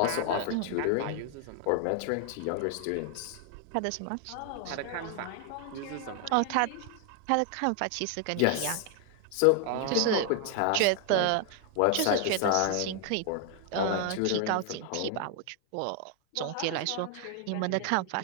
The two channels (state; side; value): different; both; correlation 0.00